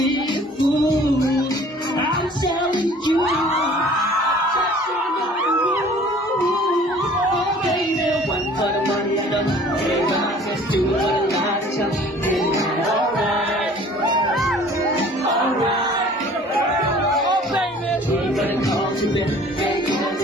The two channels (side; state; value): both; normal; correlation 0.50